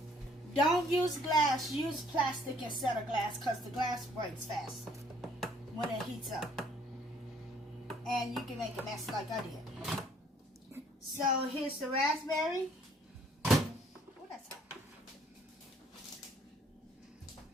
Don't use glass. Use plastic instead of glass because the glass breaks fast when it heats up. And you can make a mess like I did. So here's the raspberry. Oh, that's hot.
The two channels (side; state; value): both; normal; correlation 0.61